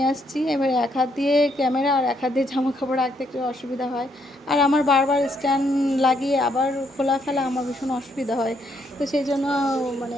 আসছি, এবার এক হাত দিয়ে ক্যামেরা আর এক হাত দিয়ে জামা কাপড় রাখতে একটু অসুবিধা হয়। আর আমার বারবার স্ট্যান্ড লাগিয়ে আবার খোলা ফেলা আমার ভীষণ অসুবিধা হয়, তো সেই জন্য মানে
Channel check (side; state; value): both; normal; correlation 0.73